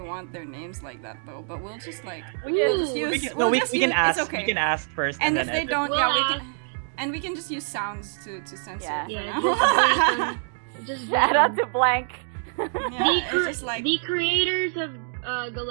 want their names like that though. But we'll just like We we'll can- just use. We can, we'll no, we just can use- ask. It's okay. We can ask first, And and if then they edit. don't, We'll yeah, we ask. can. And we can just use sounds to censor. Yeah. You Yeah, know? just Shout out to Blank. Yeah, the, it's just like the creators of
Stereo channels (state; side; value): silent; left; digital silence